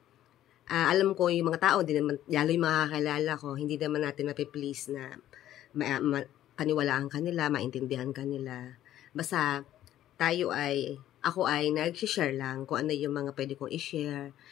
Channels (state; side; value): quieter; right; 12.6 dB